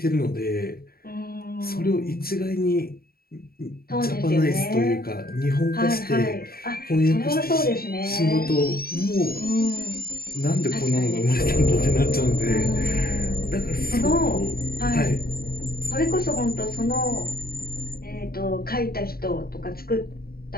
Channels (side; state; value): right; late; 0.44 ms